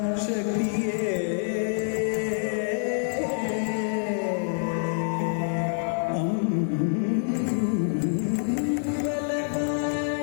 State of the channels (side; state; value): right; silent; 58 dB below the other